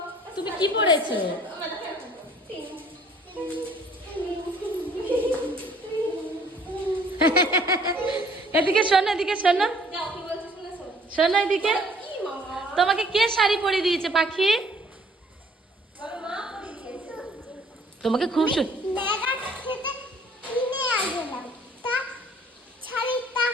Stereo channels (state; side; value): normal; both; correlation 0.57